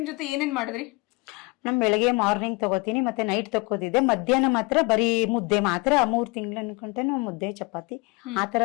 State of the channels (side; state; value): right; quieter; 26.6 dB